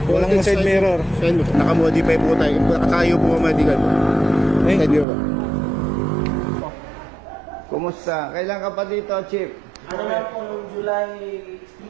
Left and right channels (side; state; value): left; drops out; at 5.1 s